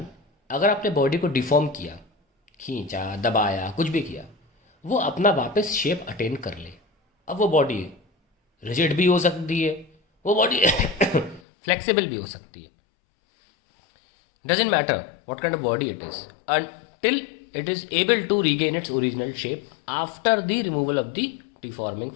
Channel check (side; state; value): right; drops out; at 11.4 s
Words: अगर आपने बॉडी को डिफॉर्म किया, खींचा, दबाया, कुछ भी किया, वो अपना वापस शेप अटेन कर ले। अब वो बॉडी रिजिड भी हो सकती है, वो बॉडी फ्लेक्सिबल भी हो सकती है। Doesn't matter what kind of body it is until it is able to regain its original shape after the removal of the deforming